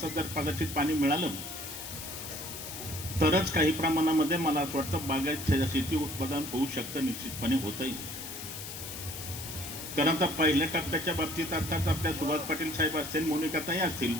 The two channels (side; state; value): left; noise; hiss, 9 dB below the sound